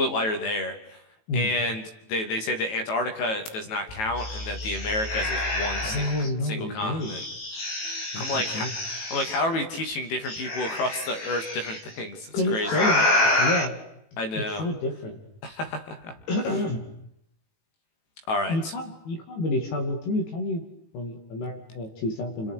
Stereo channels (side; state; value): right; late; 18 ms